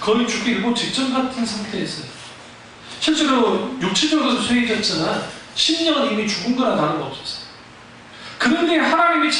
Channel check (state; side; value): identical; both; correlation 1.00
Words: 거의 죽기 일보 직전 같은 상태였어요. 실제로 육체적으로 쇠해졌지만 심령은 이미 죽은 거나 다름없었어요. 그런데 하나님이